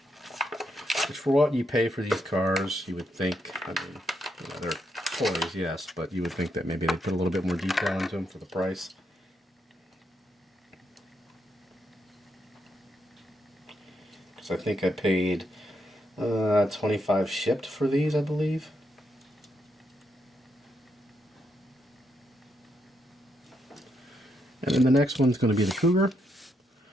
Which, for what you pay for these cars, you would think, I mean, you know, they're toys, yes, but you would think that maybe they'd put a little bit more detail into them for the price. Because I think I paid $25 shipped for these, I believe. And then the next one's going to be the Cougar.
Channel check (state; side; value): normal; both; correlation 0.80